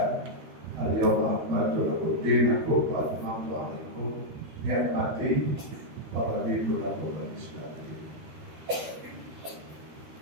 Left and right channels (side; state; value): left; late; 12 ms